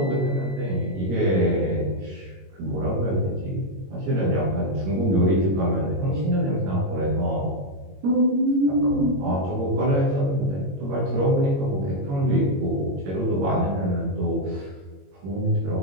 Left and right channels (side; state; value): left; late; 21 ms